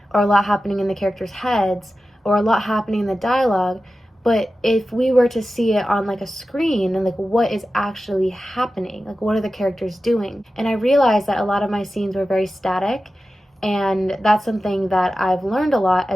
or a lot happening in the characters' heads, or a lot happening in the dialogue. But if we were to see it on like a screen, and like what is actually happening, like what are the characters doing? And I realized that a lot of my scenes were very static. And that's something that I've learned a lot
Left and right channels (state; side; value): normal; both; correlation 0.93